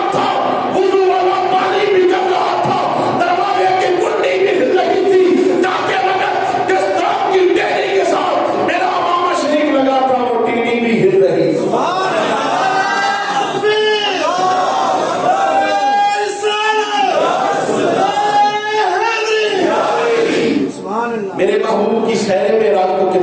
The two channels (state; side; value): identical; both; correlation 1.00